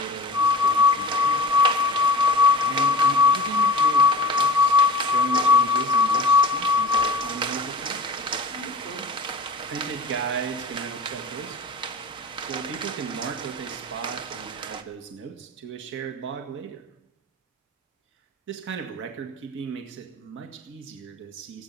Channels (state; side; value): quieter; right; 3.2 dB